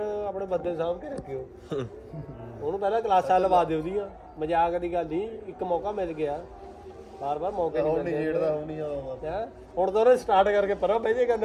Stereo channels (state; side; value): identical; both; correlation 1.00